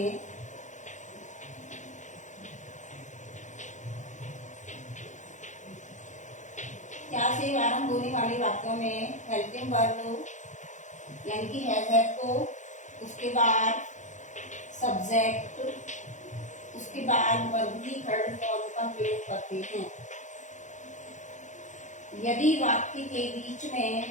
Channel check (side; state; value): right; late; 0.35 ms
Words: आरंभ होने वाले वाक्यों में हेल्पिंग वर्ब यानी कि हैज को, उसके बाद सब्जेक्ट, उसके बाद वर्ब की थर्ड फॉर्म का प्रयोग करते हैं। यदि वाक्य के बीच